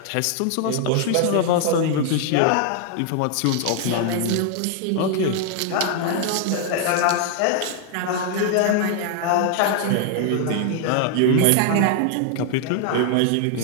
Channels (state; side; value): different; both; correlation 0.00